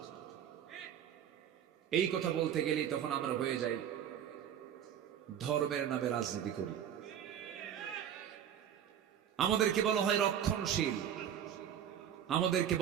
এই কথা বলতে গেলেই তখন আমরা হয়ে যাই ধর্মের নামে রাজনীতি করি। আমাদেরকে বলা হয় রক্ষণশীল, আমাদেরকে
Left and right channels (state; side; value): quieter; left; 9.4 dB